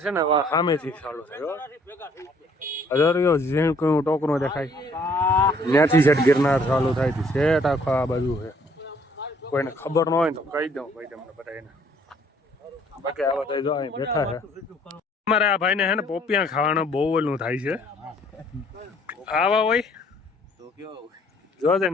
છે ને સામેથી ચાલુ થયો. હજારો જેમ કોઈ ટોકરો દેખાય ત્યાંથી સેટ ગિરનાર ચાલુ થાય છે. સેટ આખો આ બાજુ છે. કોઈને ખબર ન હોય તો કહી દઉં ભાઈ તમને બધા એને. બાકી આ બધા જો અહીં બેઠા છે. અમારે આ ભાઈને છે ને પોપિયા ખાવાનો બહુ ઓલું થાય છે. આવા હોય જોજે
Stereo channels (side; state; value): both; normal; correlation 0.61